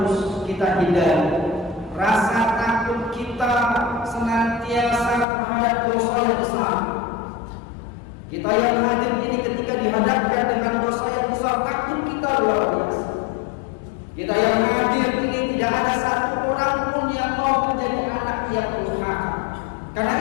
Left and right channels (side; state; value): right; drops out; at 5.2 s